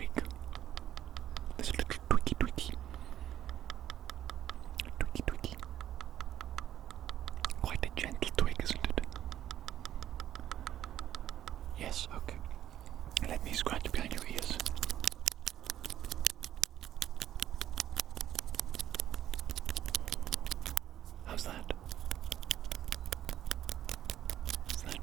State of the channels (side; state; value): left; quieter; 11.6 dB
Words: This little twiggy. Twiggy. Quite a gentle twig, isn't it? Yes, okay. Let me scratch behind your ears. How's that? Is